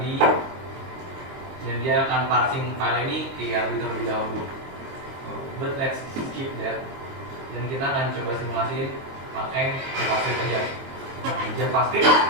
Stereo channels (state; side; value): late; left; 22 ms